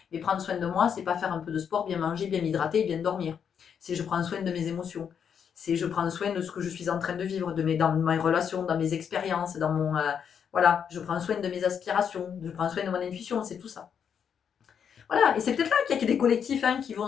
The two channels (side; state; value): right; quieter; 7.6 dB